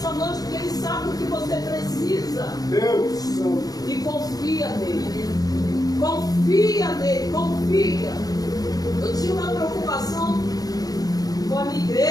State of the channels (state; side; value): late; right; 0.18 ms